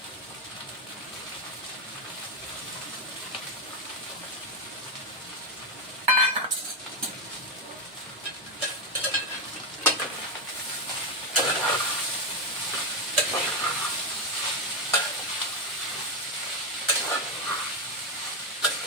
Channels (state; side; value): normal; both; correlation 0.07